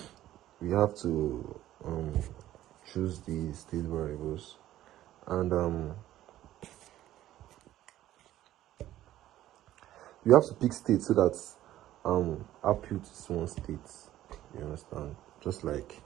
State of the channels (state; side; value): quieter; left; 13.6 dB